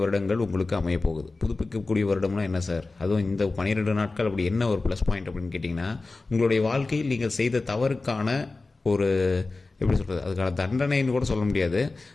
வருடங்கள் உங்களுக்கு அமைய போகுது. புதுப்பிக்கக்கூடிய வருடம்னா என்ன சார்? அதுவும் இந்த 12 நாட்கள் அப்படி என்ன ஒரு ப்ளஸ் பாயிண்ட் அப்படின்னு கேட்டிங்கன்னா, உங்களுடைய வாழ்க்கையில் நீங்கள் செய்த தவறுக்கான ஒரு எப்படி சொல்கிறது, அதுக்கான தண்டனைன்னு கூட சொல்ல முடியாது.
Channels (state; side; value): quieter; right; 3.5 dB